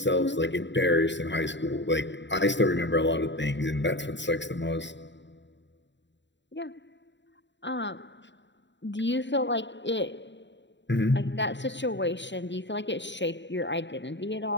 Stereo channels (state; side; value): late; right; 0.52 ms